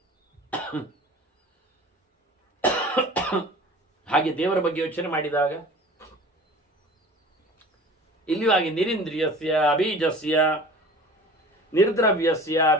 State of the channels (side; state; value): both; normal; correlation 0.42